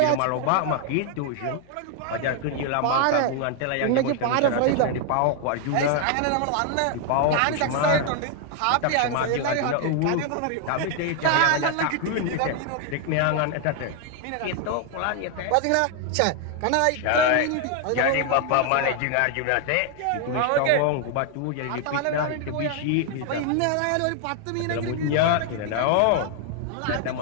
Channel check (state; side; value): different; both; correlation 0.00